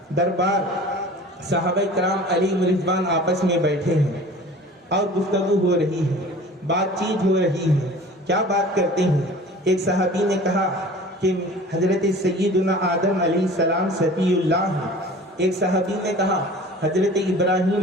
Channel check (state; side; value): normal; both; correlation 0.43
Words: دربار صحابہ کرام علیہ رضوان آپس میں بیٹھے ہیں اور گفتگو ہو رہی ہے، بات چیت ہو رہی ہے۔ کیا بات کرتے ہیں؟ ایک صحابی نے کہا کہ حضرت سیدنا آدم علیہ السلام صفی اللہ ہیں، ایک صحابی نے کہا حضرت